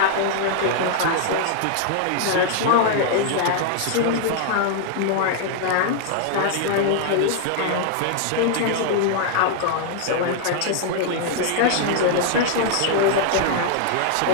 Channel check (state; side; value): different; both; correlation 0.00